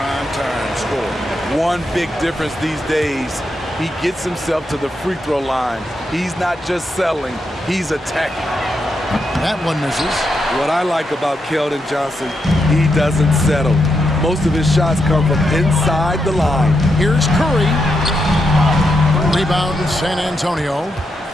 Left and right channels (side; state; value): both; normal; correlation 0.83